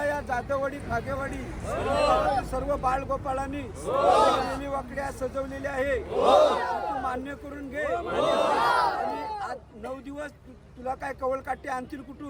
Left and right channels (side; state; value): both; identical; correlation 1.00